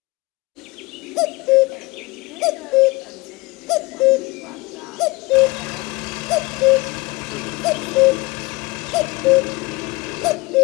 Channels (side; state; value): right; quieter; 23.5 dB